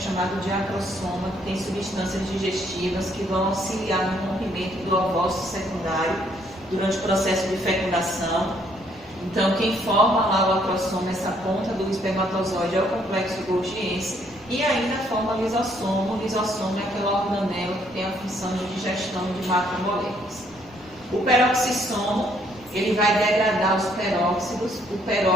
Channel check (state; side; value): normal; both; correlation 0.68